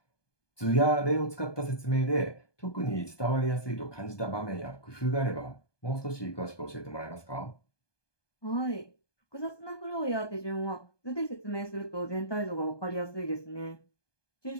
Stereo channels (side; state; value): right; late; 1.2 ms